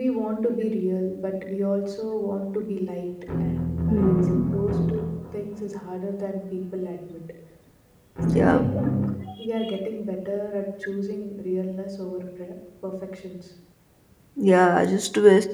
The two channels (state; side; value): identical; both; correlation 1.00